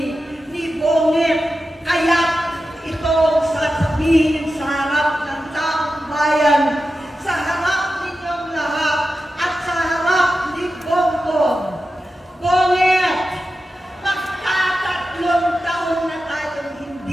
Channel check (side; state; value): both; normal; correlation 0.92